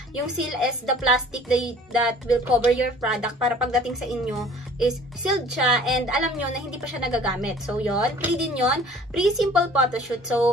Yung seal is the plastic that will cover your product para pagdating sa inyo is sealed siya and alam nyo na hindi pa siya nagagamit. So, yon, free din yon. Free simple photoshoot.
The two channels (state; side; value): normal; both; correlation 0.50